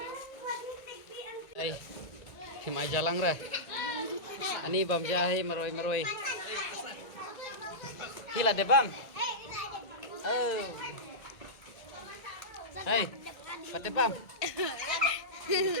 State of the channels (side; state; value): right; late; 1.9 ms